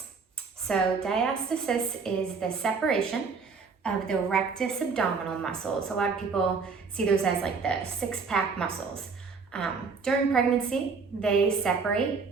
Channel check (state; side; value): quieter; left; 5.0 dB